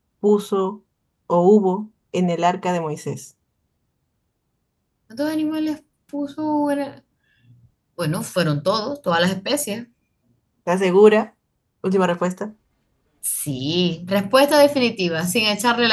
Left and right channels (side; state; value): both; identical; correlation 1.00